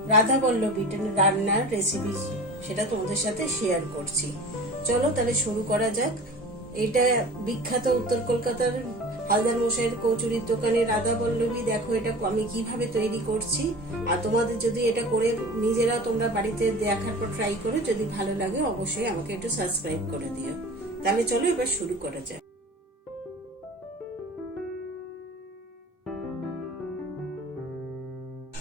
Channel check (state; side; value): normal; both; correlation 0.38